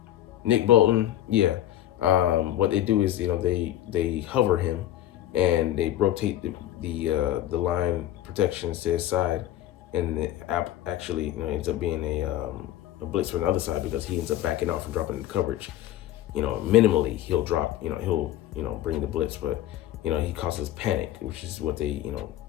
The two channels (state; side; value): quieter; right; 13.0 dB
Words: Nick Bolton, yeah. What they do is they hover him, and they rotate the line protections to his side, and the app actually ends up being a blitz from the other side, because he ends up backing off and dropping the coverage. Minimally he'll drop. He'll bring the blitz, but he causes panic, which is what they